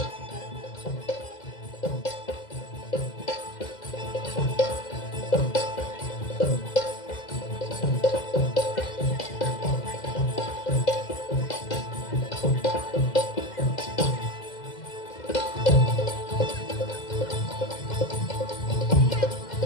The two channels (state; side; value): late; right; 2.0 ms